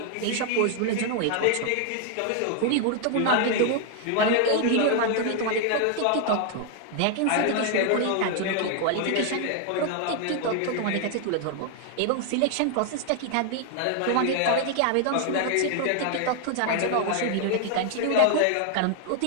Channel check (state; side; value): different; both; correlation 0.00